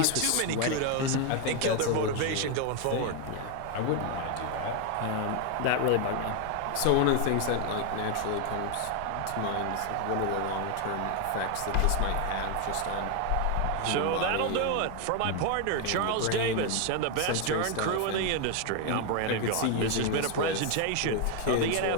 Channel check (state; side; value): different; both; correlation 0.01